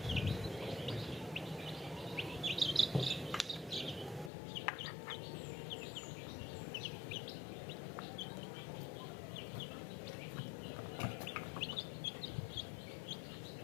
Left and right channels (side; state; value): right; drops out; at 4.3 s